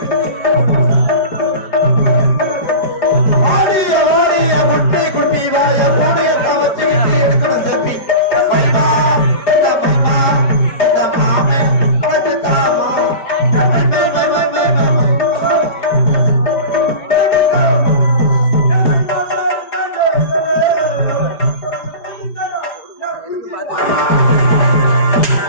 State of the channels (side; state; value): right; late; 4.9 ms